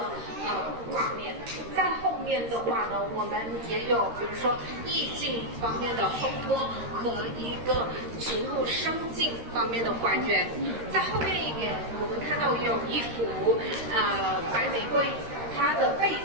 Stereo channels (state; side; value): late; left; 13 ms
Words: 画面。在后面的话呢，我们也有比如说意境方面的烘托和一个植物生境方面的还原。在后面一点，我们看到有一幅白玫瑰，它的背